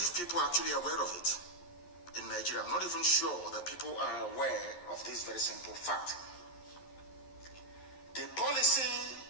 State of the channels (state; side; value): late; right; 11 ms